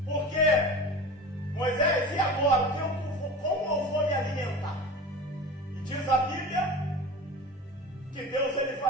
Porque Moisés, e agora? Como eu vou me alimentar? E diz a Bíblia que Deus ele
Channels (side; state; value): both; normal; correlation 0.33